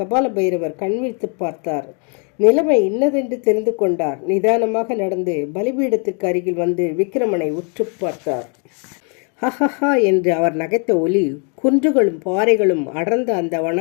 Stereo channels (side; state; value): right; quieter; 38.2 dB